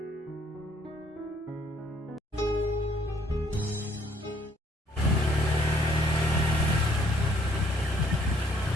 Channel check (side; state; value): both; normal; correlation 0.64